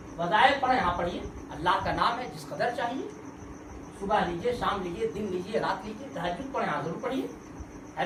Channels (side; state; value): both; identical; correlation 1.00